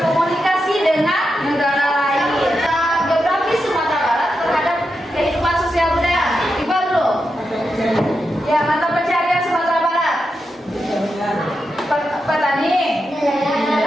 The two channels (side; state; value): both; normal; correlation 0.87